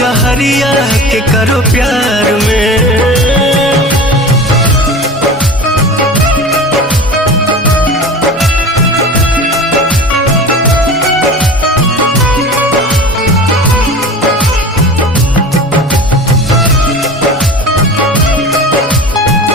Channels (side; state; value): both; normal; correlation 0.34